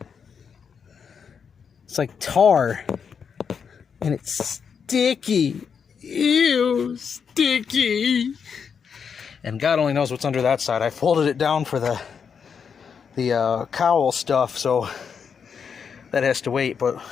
It's like tar. And it's sticky. Ew, sticky. And God only knows what's under that side. I folded it down for the cowl stuff, so that has to wait. But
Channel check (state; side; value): quieter; right; 6.6 dB